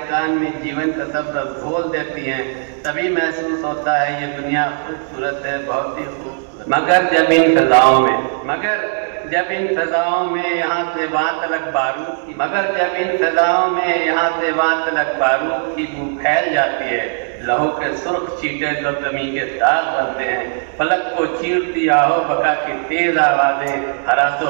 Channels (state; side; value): silent; left; digital silence